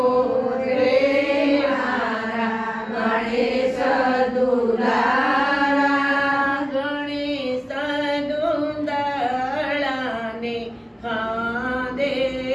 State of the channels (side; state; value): both; identical; correlation 1.00